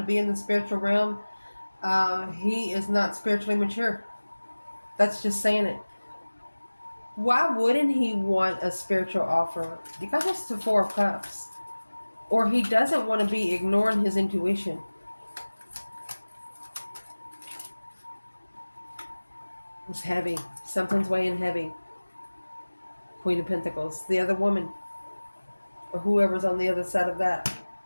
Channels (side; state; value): both; inverted; correlation -1.00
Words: be in the spiritual realm, he is not spiritually mature. That's just saying it. Why wouldn't he want a spiritual offer? You got this to 4 of Cups. Or he doesn't want to be ignoring his intuition. It's heavy. Something's weighing heavy. Queen of Pentacles. The other woman. Or whoever's on the other side of that.